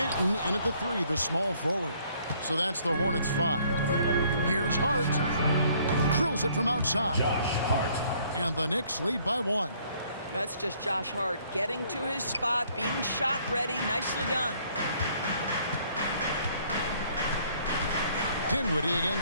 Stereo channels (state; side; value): inverted; both; correlation -0.62